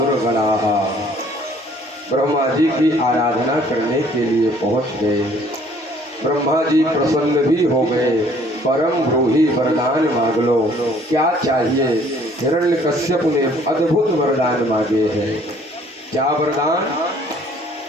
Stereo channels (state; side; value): normal; both; correlation 0.58